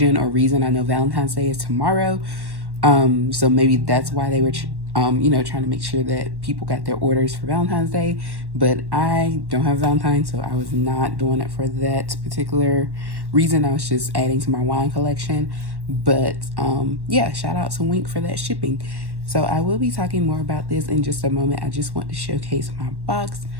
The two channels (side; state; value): left; late; 1.1 ms